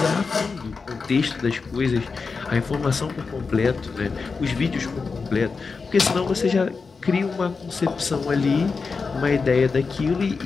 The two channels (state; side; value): quieter; right; 4.7 dB